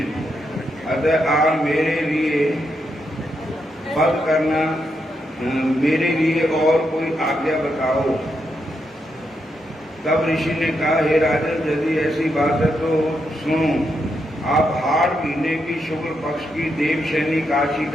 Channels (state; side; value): normal; both; correlation 0.82